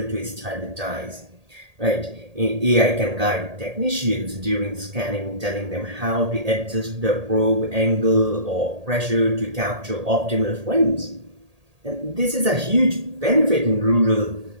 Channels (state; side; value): late; left; 1.8 ms